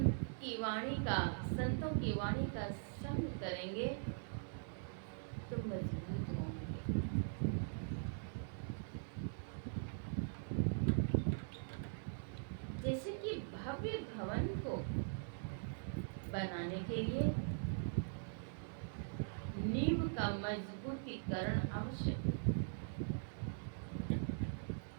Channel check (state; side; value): silent; left; digital silence